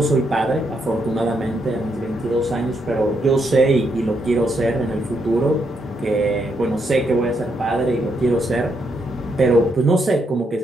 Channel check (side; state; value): both; normal; correlation 0.78